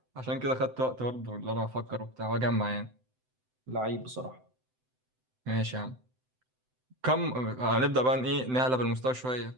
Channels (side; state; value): left; late; 7.8 ms